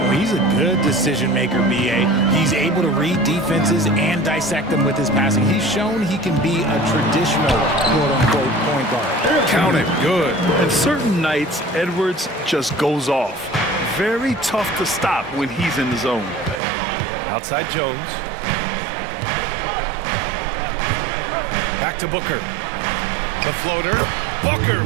he's a good decision maker, B.A. He's able to read defenses and dissect them with his passing. He's shown he can be a traditional quote-unquote point guard. Count it. Good. And certain nights, Edwards just goes off. Very tough to stop when he's in the zone. Outside Jones. Back to Booker. The floater. Booker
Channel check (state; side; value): drops out; left; at 16.6 s